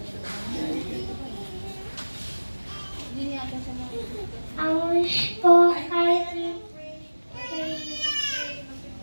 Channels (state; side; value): inverted; both; correlation -1.00